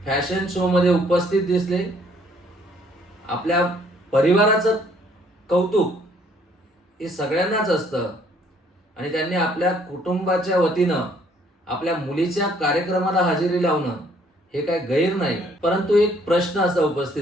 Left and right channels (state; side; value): normal; both; correlation 0.63